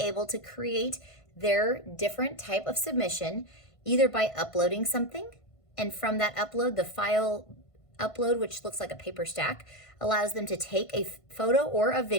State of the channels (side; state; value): right; late; 1.5 ms